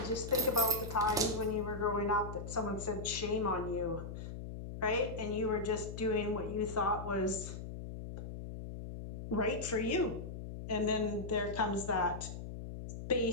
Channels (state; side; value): noise; left; hum, 8 dB below the sound